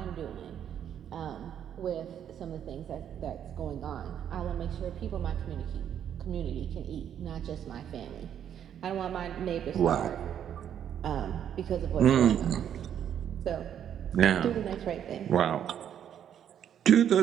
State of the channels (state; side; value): quieter; left; 9.4 dB